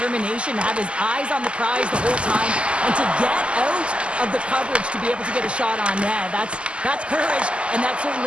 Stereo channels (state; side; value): late; left; 0.054 ms